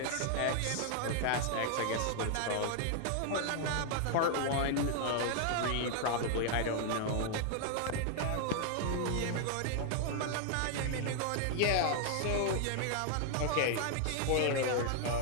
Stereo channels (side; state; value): both; different; correlation 0.00